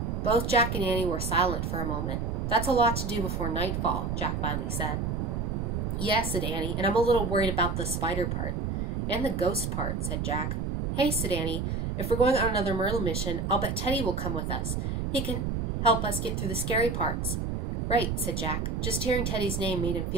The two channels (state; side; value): noise; right; rumble, 1 dB below the sound